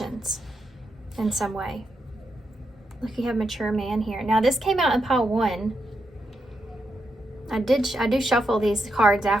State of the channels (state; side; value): normal; both; correlation 0.83